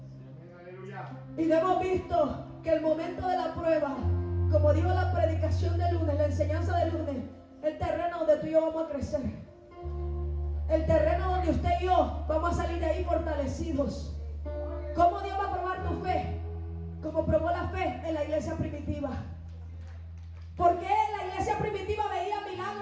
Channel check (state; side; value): identical; both; correlation 1.00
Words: Y hemos visto que el momento de la prueba, como dijo la predicación de lunes, la enseñanza de lunes, el terreno donde tú y yo vamos a crecer. El terreno donde usted y yo vamos a salir de ahí fortalecidos. ¿Cómo Dios va a probar tu fe? Como probó la fe en la iglesia primitiva. ¿Por qué la iglesia primitiva veía